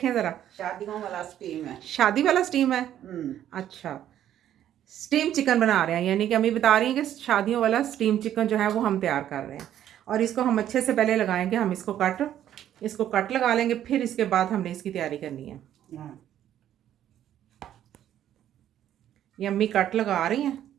ज़रा। शादियों वाला स्टीम है। शादी वाला स्टीम है। अच्छा, स्टीम चिकन बना रहे हैं, यानी कि अम्मी बता रही हैं कि शादियों वाला स्टीम चिकन जो है वो हम तैयार कर रहे हैं। और इसको हम अच्छे से पहले लगाएंगे, हम इसको कट लगा लेंगे, फिर इसके बाद हमने इसकी तैयारी करनी है। ये अम्मी कट लगा रही हैं।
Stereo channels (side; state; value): left; quieter; 11.2 dB